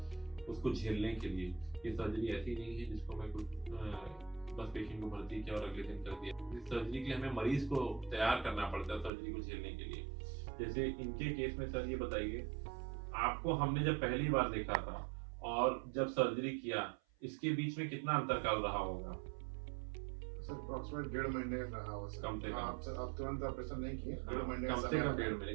उसको झेलने के लिए। ये सर्जरी ऐसी नहीं है जिसको मैं कुछ बस पेशेंट को भर्ती किया और अगले दिन कर दिया। इस सर्जरी के लिए हमें मरीज को तैयार करना पड़ता है सर्जरी को झेलने के लिए। जैसे इनके केस में सर ये बताइए, आपको हमने जब पहली बार देखा था और जब सर्जरी किया, इसके बीच में कितना अंतरकाल रहा होगा? सर अप्रॉक्सीमेट 1.5 महीने रहा होगा सर। कम से कम। आप तुरंत ऑपरेशन नहीं किए, 1.5 महीने कम से कम 1.5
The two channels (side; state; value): left; drops out; at 9.1 s